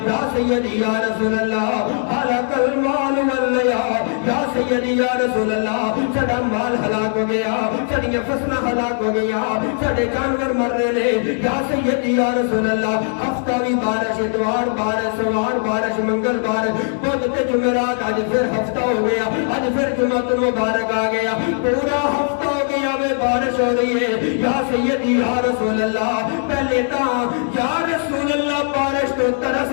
یا سیدی یا رسول اللہ ہلاک المال واللیا, یا سیدی یا رسول اللہ ساڈا مال ہلاک ہو گیا, ساڈیاں فصلاں ہلاک ہو گیا, ساڈے جانور مر رہے نے. یا سیدی یا رسول اللہ ہفتہ بھی بارش, اتوار بارش, سوار بارش, منگل بدھ تے جمعرات, آج پھر ہفتہ ہو گیا, آج پھر جمعۃ المبارک آ گیا, پورا ہفتہ ہو گیا میں بارش ہو رہی ہے. یا سیدی یا رسول اللہ پہلے تاں یا رسول اللہ بارش تو ترس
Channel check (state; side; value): silent; right; 57 dB below the other